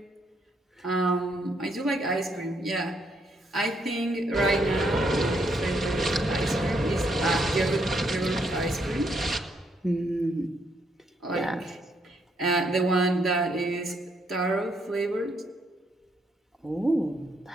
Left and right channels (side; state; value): both; normal; correlation 0.74